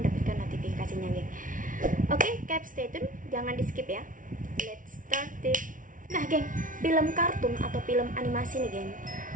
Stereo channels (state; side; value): late; left; 0.38 ms